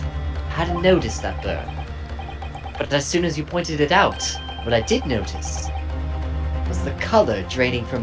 I hadn't noticed that burn. But as soon as you pointed it out, what I did notice was the color draining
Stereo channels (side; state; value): both; identical; correlation 1.00